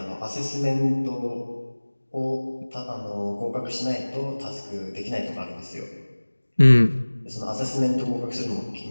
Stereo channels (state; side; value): inverted; both; correlation -1.00